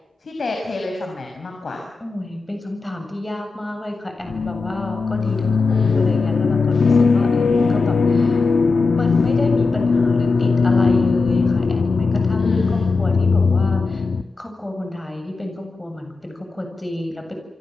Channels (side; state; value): right; quieter; 4.1 dB